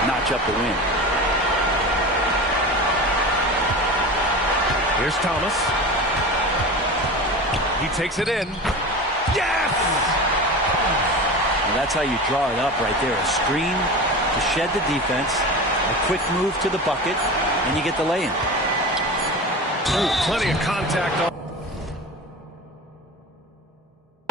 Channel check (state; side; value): normal; both; correlation 0.30